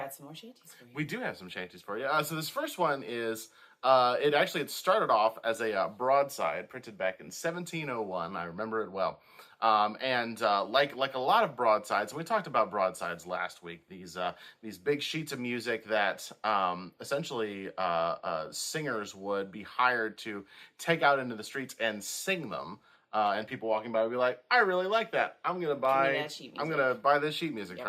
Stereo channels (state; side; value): identical; both; correlation 1.00